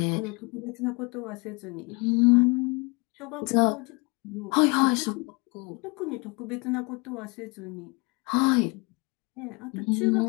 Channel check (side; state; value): right; quieter; 29.5 dB